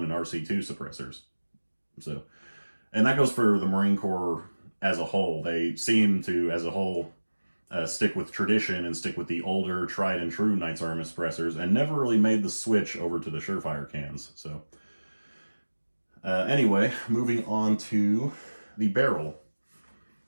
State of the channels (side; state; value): both; inverted; correlation -1.00